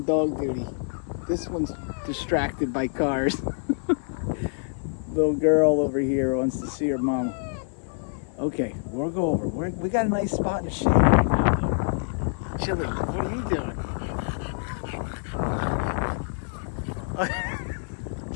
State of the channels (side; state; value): right; silent; 57 dB below the other